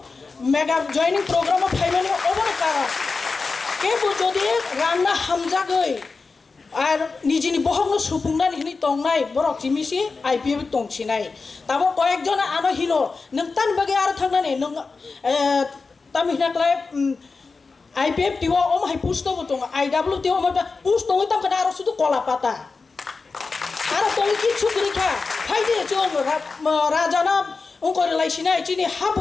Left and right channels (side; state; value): right; quieter; 4.3 dB